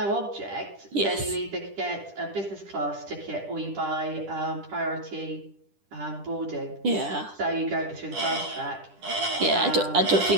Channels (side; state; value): left; late; 10 ms